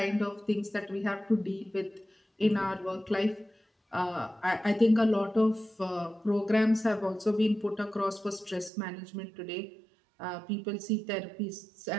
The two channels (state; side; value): drops out; left; at 8.7 s